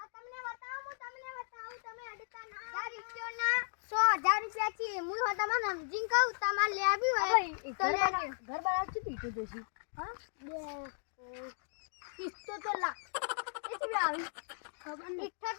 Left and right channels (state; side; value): silent; right; digital silence